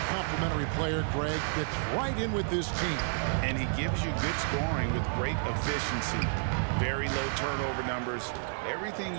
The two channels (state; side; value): silent; left; digital silence